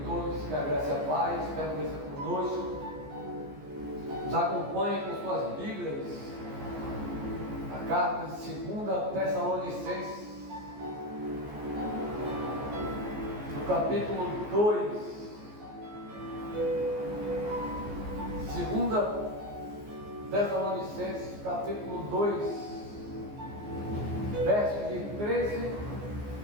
todos, que a graça e a paz permaneça conosco. Nos acompanhem com suas Bíblias, a carta de 2 Tessalonicenses, no capítulo 2. 2 Tessalonicenses, capítulo 2, versos de 13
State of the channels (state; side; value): late; left; 14 ms